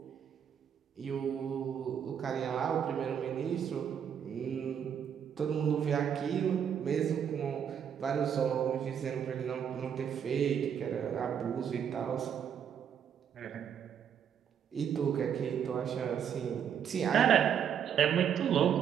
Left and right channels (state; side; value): quieter; left; 8.3 dB